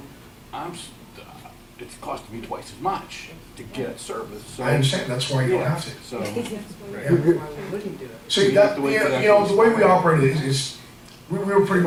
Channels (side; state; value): both; identical; correlation 1.00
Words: it's costing me twice as much to get service. So, I understand, that's why you don't have to. So, See, that, you know, the way we operate is we were pretty